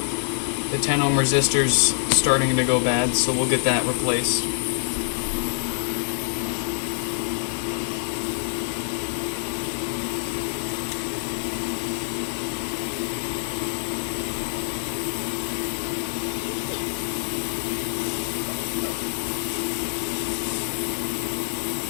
The 10 ohm resistor's starting to go bad, so we'll get that replaced.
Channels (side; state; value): right; silent; digital silence